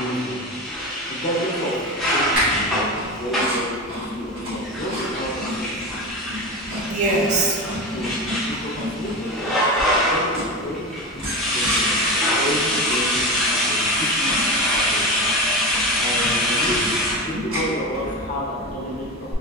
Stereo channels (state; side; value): normal; both; correlation 0.23